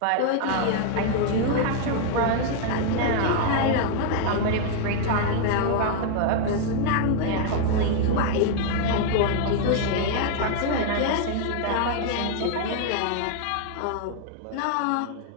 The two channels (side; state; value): both; different; correlation 0.00